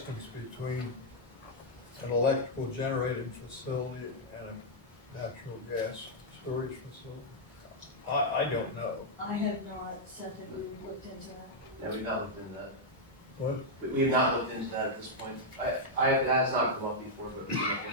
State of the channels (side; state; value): both; normal; correlation -0.04